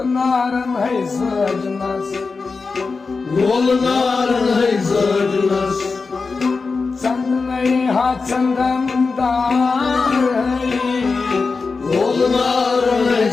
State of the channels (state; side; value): quieter; right; 4.4 dB